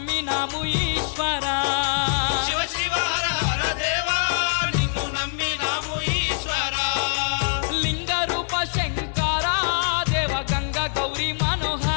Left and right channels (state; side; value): silent; right; digital silence